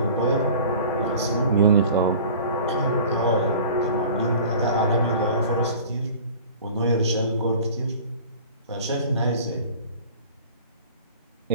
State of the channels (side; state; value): both; inverted; correlation -0.43